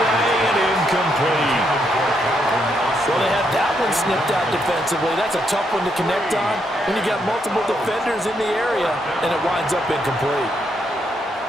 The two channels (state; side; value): normal; both; correlation 0.77